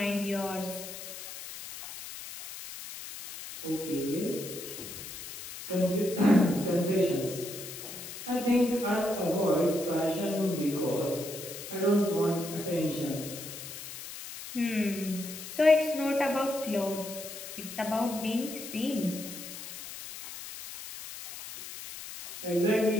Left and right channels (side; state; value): left; noise; hiss, 11 dB below the sound